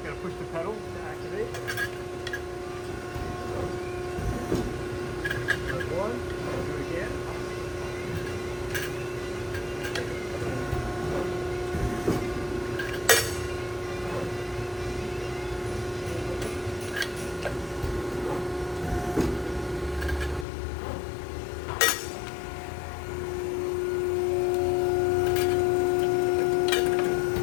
going to push the pedal to activate. Press one, we'll do it again.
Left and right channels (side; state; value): right; drops out; at 20.5 s